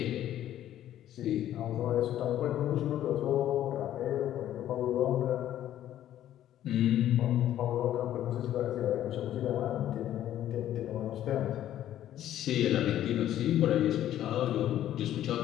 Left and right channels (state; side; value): quieter; right; 12.1 dB